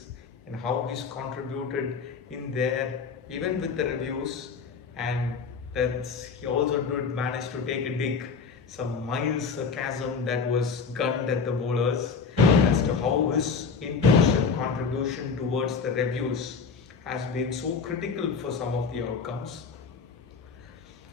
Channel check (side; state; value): right; quieter; 5.2 dB